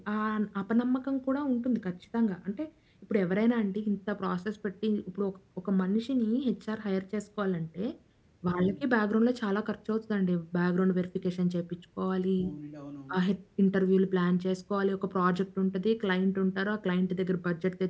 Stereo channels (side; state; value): both; identical; correlation 1.00